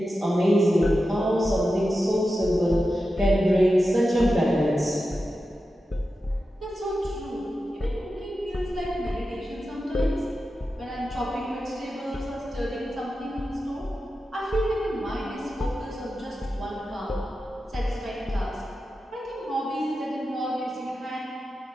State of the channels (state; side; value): normal; both; correlation 0.91